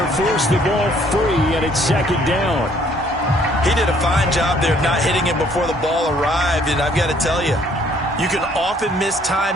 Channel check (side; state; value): both; normal; correlation 0.62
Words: forced the ball free, and it's second down. He did a fine job there of not hitting him before the ball arrived, and I've got to tell you, you can often